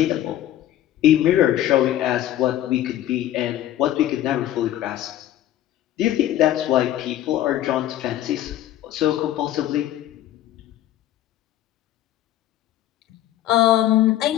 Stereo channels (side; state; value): right; quieter; 13.0 dB